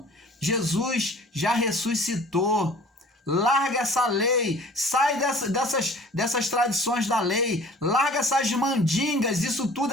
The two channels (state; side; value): normal; both; correlation 0.47